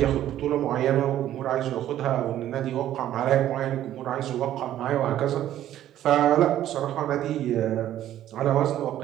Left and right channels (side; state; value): left; quieter; 12.3 dB